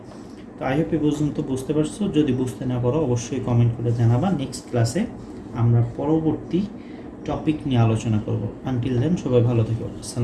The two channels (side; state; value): both; identical; correlation 1.00